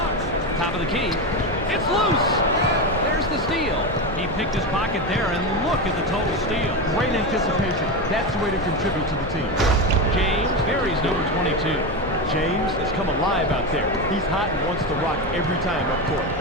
Top of the key. It's loose. There's the steal. He picked his pocket there, and look at the total steal. Great anticipation. That's the way to contribute to the team. James buries number 22. James has come alive out there. He's hot and wants to rock every time up court.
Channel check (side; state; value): both; normal; correlation 0.16